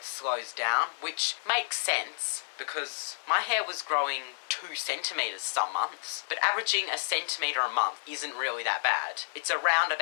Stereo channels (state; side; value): silent; right; 58 dB below the other